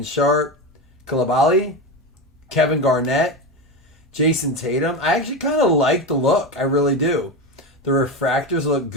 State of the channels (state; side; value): normal; both; correlation 0.19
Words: Sharp, Coulibaly, Kevin Garnett, Jason Tatum. I actually kind of like the look. I really do. The refractors look